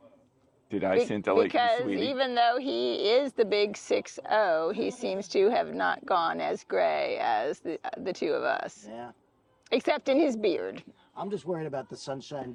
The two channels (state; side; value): identical; both; correlation 1.00